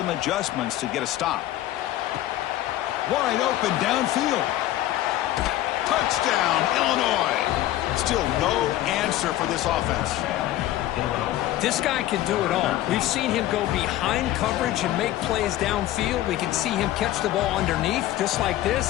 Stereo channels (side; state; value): right; quieter; 14.3 dB